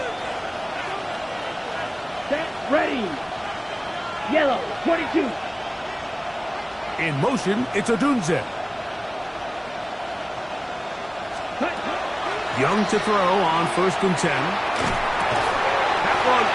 Set, ready. Yellow, 22. In motion, it's Odunze. Young to throw on 1st and 10. That one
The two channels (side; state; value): both; identical; correlation 1.00